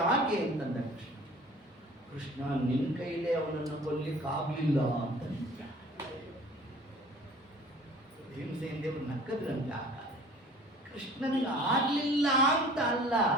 ಅಂತಂದ ಕೃಷ್ಣ, ನಿನ್ನ ಕೈಲೇ ಅವನನ್ನು ಕೊಲ್ಲಿಕ್ಕಾಗಲಿಲ್ಲ ಅಂತ. ಭೀಮಸೇನ ದೇವರು ನಕ್ಕದ್ರಂತೆ. ಆಗ ಕೃಷ್ಣನಿಗೆ ಆಗ್ಲಿಲ್ಲ ಅಂತ ಅಲ್ಲ,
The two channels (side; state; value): both; normal; correlation 0.48